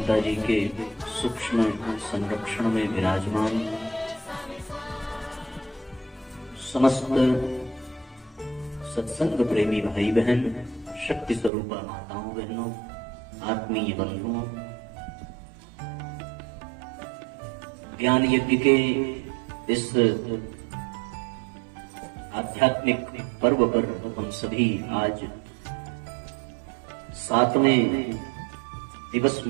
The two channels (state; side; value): drops out; left; at 11.5 s